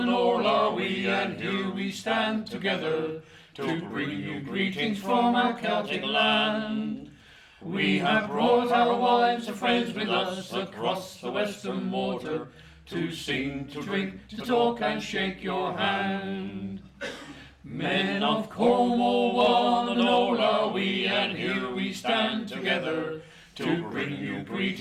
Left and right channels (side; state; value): both; identical; correlation 1.00